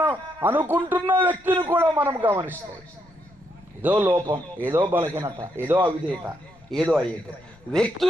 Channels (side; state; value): left; noise; rumble, 28 dB below the sound